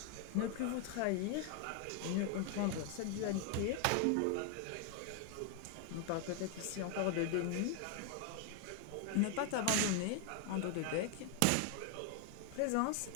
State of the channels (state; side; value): different; both; correlation 0.00